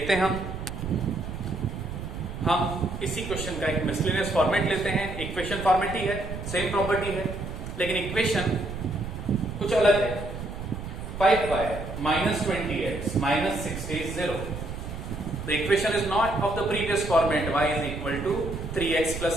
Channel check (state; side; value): noise; right; rumble, 8 dB below the sound